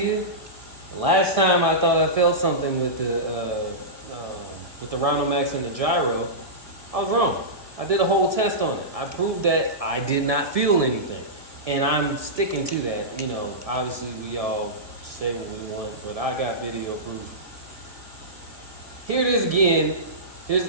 The last time I thought I felt something with the Rhinomax and the gyro, I was wrong. I did a whole test on it. I proved that I did not feel anything, and I'm sticking to that. You know, obviously we all say what we want, but I got video proof. Here it is again.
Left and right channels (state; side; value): late; left; 1.6 ms